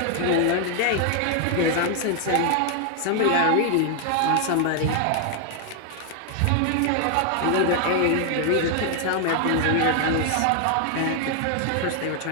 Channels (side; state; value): both; different; correlation 0.00